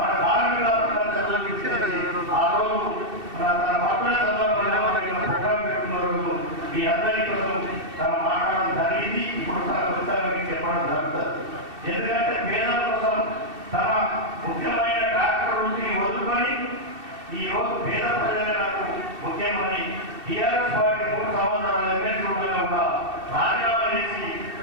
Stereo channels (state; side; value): late; left; 2.7 ms